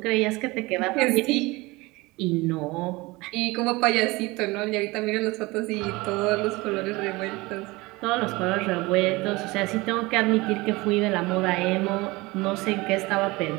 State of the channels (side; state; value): left; quieter; 22.6 dB